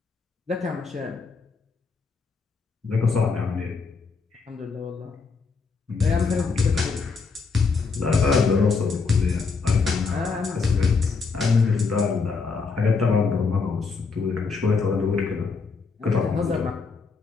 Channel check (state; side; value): quieter; right; 4.8 dB